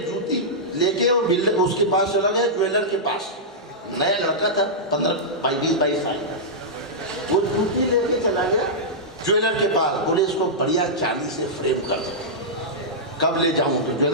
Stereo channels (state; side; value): normal; both; correlation -0.12